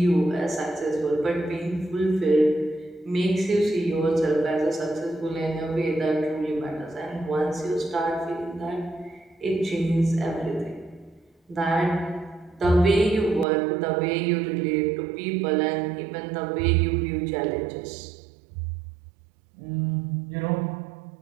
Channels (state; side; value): drops out; left; at 13.5 s